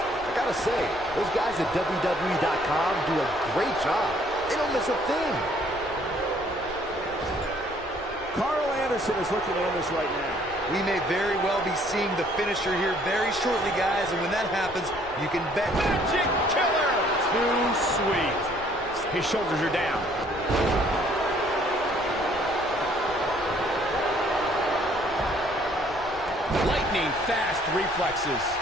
I gotta say, those guys at WWE.com do a great job. They don't miss a thing. Carl Anderson is looking at this right now. We may very well be seeing the finisher here very shortly, guys, and when that happens, you can bet. Magic killer! Too sweet. His shoulders are down. Lightning fast reflexes.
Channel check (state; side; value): noise; left; rumble, 18 dB below the sound